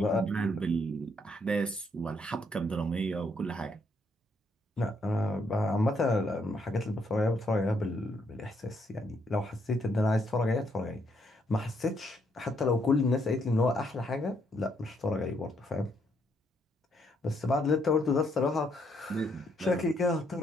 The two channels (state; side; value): normal; both; correlation 0.73